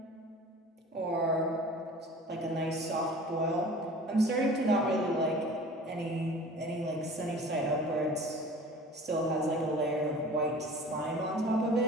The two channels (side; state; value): both; normal; correlation 0.42